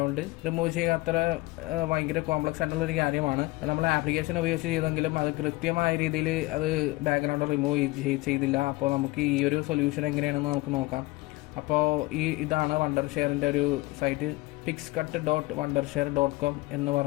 റിമൂവ് ചെയ്യുക അത്ര ഭയങ്കര കോംപ്ലക്സ് ആയിട്ടുള്ളൊരു കാര്യമാണ്. നമ്മൾ ആപ്ലിക്കേഷൻ ഉപയോഗിച്ച് ചെയ്തെങ്കിലും അത് കൃത്യമായ രീതിയിൽ അത് ബാക്ക്ഗ്രൗണ്ട് റിമൂവ് ചെയ്തില്ല. അപ്പോൾ നമുക്ക് ഈ ഒരു സൊല്യൂഷൻ എങ്ങനെയാണെന്ന് നമുക്ക് നോക്കാം. അപ്പോൾ ഇതാണ് വണ്ടർഷെയറിൻ്റെ ഒരു സൈറ്റ്. pixcut.wondershare.com എന്ന്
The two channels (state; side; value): quieter; right; 21.8 dB